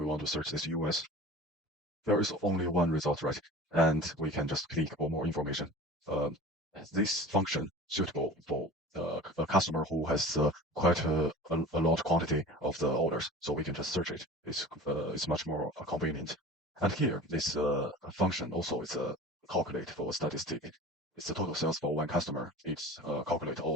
want to search this US, there is only one result, right? And we can just click for more information. Um, this function suitable for a customer who has quite a large quantity of the orders, so we can just search it. It's much more convenient. And here, this function also is a calculate for statistic. It's the total sales for one customer. It's calculate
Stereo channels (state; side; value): normal; both; correlation 0.39